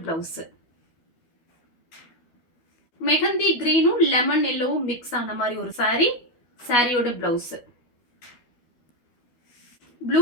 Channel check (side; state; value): right; late; 12 ms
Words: பிளவுஸ். மெஹந்தி கிரீனும் லெமன் எல்லோவும் மிக்ஸ் ஆன மாதிரி ஒரு சாரி. சாரியோட பிளவுஸ். ப்ளூ